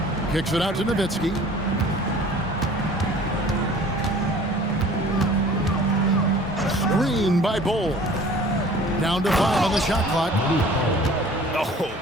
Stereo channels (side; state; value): both; normal; correlation 0.48